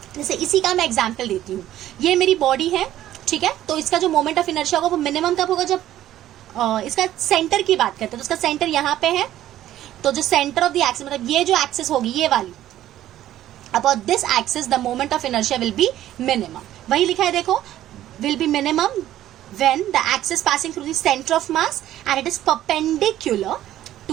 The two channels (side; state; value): left; quieter; 13.0 dB